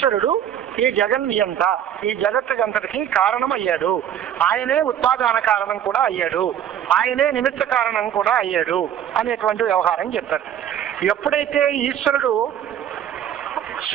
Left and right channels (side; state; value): left; quieter; 9.9 dB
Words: ఈ జగన్నియంత, ఈ జగత్తుకంతటికి కారణం అయ్యాడు. ఆయనే ఉత్పాదన కారణం కూడా అయ్యాడు, ఆయనే నిమిత్త కారణం కూడా అయ్యాడు అనేటువంటి వ్యవహారం చెప్తారు. ఎప్పుడైతే ఈశ్వరుడు